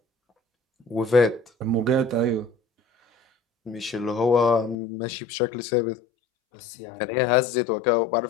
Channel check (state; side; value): drops out; right; at 4.8 s